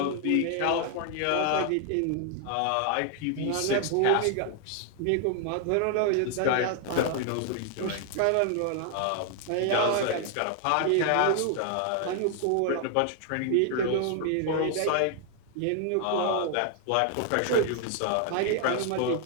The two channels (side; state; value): both; different; correlation 0.00